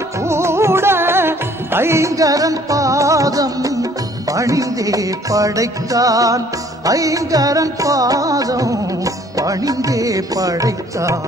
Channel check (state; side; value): normal; both; correlation 0.58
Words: கூட ஐங்கரன் பாதம் பணிந்தே படைத்தான். ஐங்கரன் பாதம் பணிந்தே